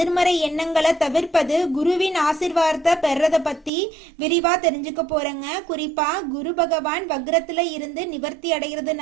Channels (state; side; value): drops out; left; at 3.7 s